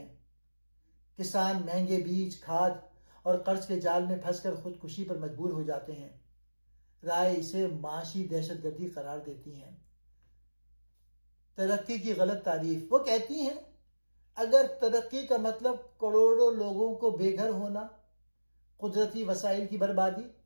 کسان مہنگے بیج، کھاد اور قرض کے جال میں پھنس کر خودکشی پر مجبور ہو جاتے ہیں۔ رائے اسے معاشی دہشت گردی قرار دیتی ہیں۔ ترقی کی غلط تعریف، وہ کہتی ہیں اگر ترقی کا مطلب کروڑوں لوگوں کو بے گھر ہونا، قدرتی وسائل کی بربادی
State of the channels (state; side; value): inverted; both; correlation -1.00